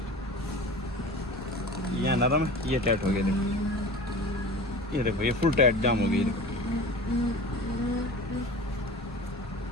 यहाँ नरम है, ये टाइट हो गया, देखो ये फुल टाइट जाम हो गई, देखो।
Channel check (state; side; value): normal; both; correlation 0.36